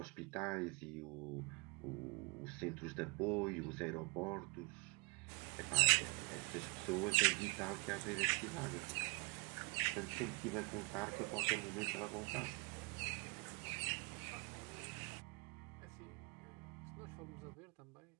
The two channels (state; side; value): quieter; left; 31.7 dB